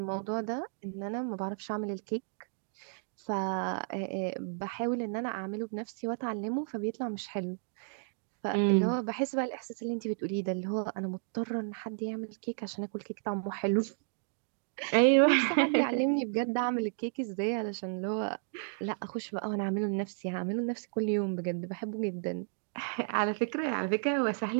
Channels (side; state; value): left; silent; digital silence